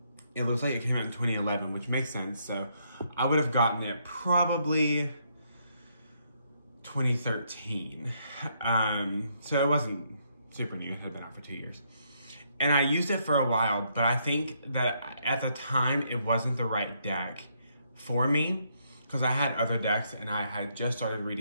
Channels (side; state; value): both; inverted; correlation -0.73